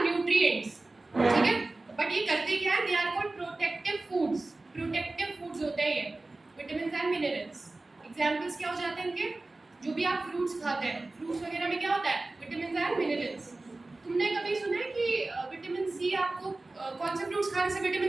nutrients, ठीक है। बट ये करते क्या है? They are called protective foods. Protective foods होते हैं ये विटामिन्स एंड मिनरल्स। एग्जांपल्स क्या हो जाते हैं इनके? जो भी आप फ्रूट्स खाते हैं, फ्रूट्स वगैरह में क्या होता है? Vitamins and minerals. तुमने कभी सुना है कि विटामिन सी आपको कौन से फ्रूट्स खाने से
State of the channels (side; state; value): left; quieter; 3.1 dB